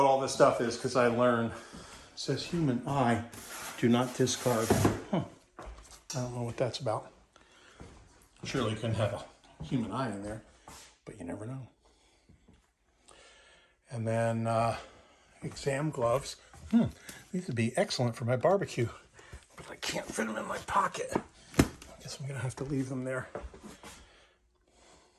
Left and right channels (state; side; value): identical; both; correlation 1.00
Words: all this stuff is, because I learned. It says human eye, do not discard. I don't know what that's about. Surely you couldn't have a human eye in there, but you never know. And then exam gloves. These would be excellent for my barbecue, but I can't fit them in my pocket. I guess I'm gonna have to leave them there.